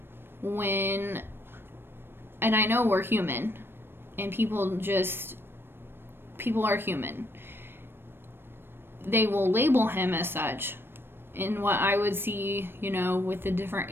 and I know we're human, and people are human. They will label him as such, and what I would see, with the different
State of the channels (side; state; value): left; late; 0.10 ms